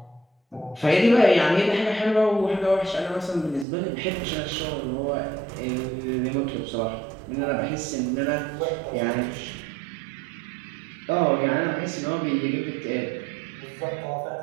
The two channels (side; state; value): left; drops out; at 3.7 s